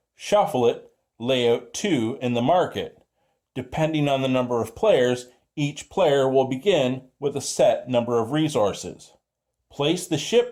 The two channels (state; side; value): identical; both; correlation 1.00